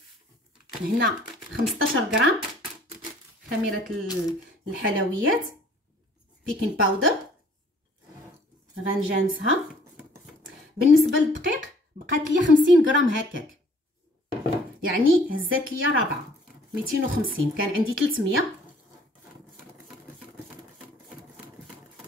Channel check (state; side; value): normal; both; correlation 0.56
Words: هنا 15 غرام خميره الحلويات بيكين باودر. غنجانسها. بالنسبه للدقيق بقات لي 50 غرام هكاك، يعني هزات لي رابعه 250. كان عندي 300.